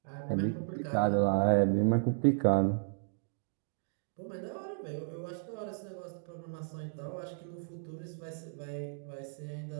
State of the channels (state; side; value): silent; left; digital silence